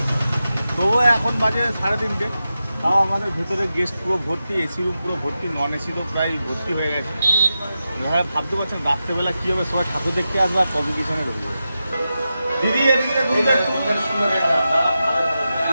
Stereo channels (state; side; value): inverted; both; correlation -0.91